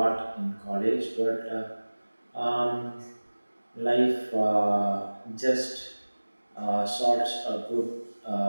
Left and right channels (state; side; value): inverted; both; correlation -1.00